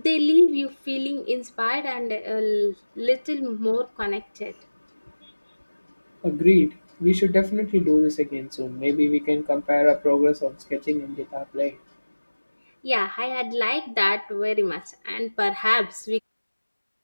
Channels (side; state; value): both; inverted; correlation -1.00